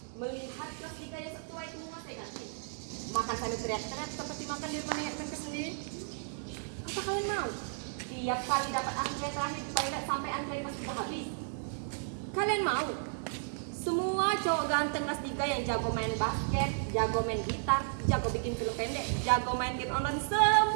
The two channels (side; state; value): left; silent; digital silence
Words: melihat kelas 3 yang setua itu menguasai ganti? Makan sambil teriak-teriak seperti makan di depan nenek tempe sendiri? Apa kalian mau? Tiap kali dapat antre terakhir di toilet sampai antre pas sudah habis. Kalian mau? Semua cowok ganteng kelas 3 yang jago main basket, jago main gitar, jago bikin film pendek, jago main game online,